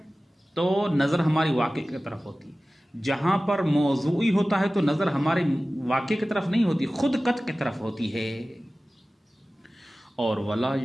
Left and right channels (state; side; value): normal; both; correlation 0.97